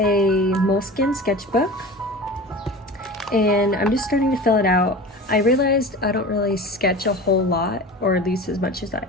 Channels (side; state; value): both; normal; correlation 0.34